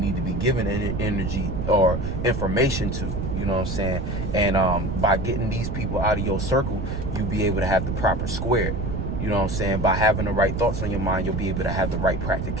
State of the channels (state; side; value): noise; right; rumble, 3 dB below the sound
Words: to be giving energy or information to? You know what I'm saying? And by getting these people out of your circle, you'll be able to have the proper square. You know what I'm saying? By having the right thoughts on your mind, you'll be able to have the right